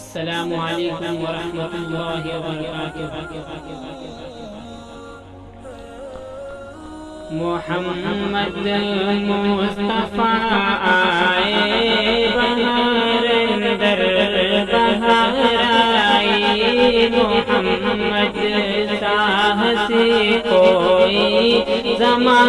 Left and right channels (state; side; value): identical; both; correlation 1.00